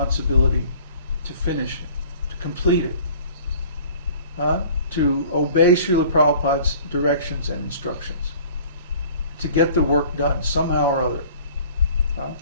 to finish it, to complete it, to obey Srila Prabhupada's directions and instructions, to get the work done somehow or other.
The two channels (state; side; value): inverted; both; correlation -0.49